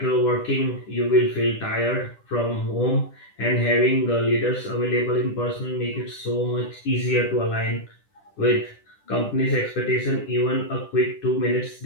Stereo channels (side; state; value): right; late; 10 ms